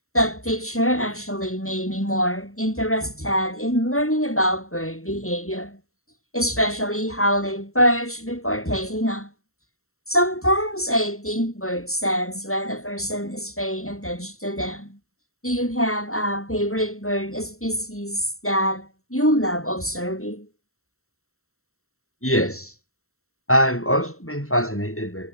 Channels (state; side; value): late; right; 0.63 ms